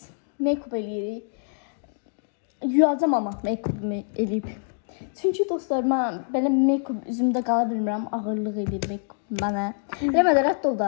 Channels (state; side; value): silent; right; digital silence